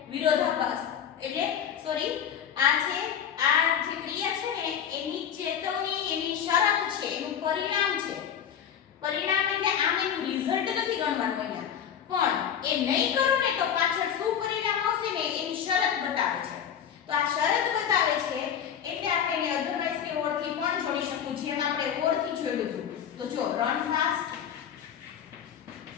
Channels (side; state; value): right; quieter; 8.7 dB